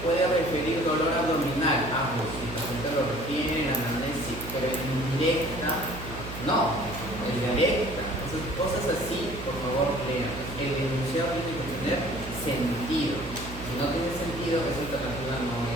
puede referir dolor abdominal. Pues si el paciente lo refiere en anamnesis, pero en indirecta, no, es directa. Cosas así, por favor, lean. El enunciado tiene que tener sentido. Si no tiene sentido, esa alternativa no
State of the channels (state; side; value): noise; right; hum, 10 dB below the sound